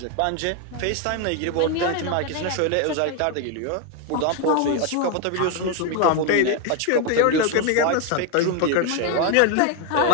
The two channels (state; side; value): different; both; correlation 0.01